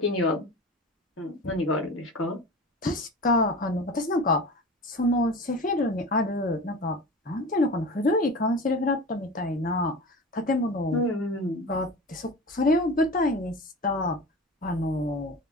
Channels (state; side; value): normal; both; correlation 0.33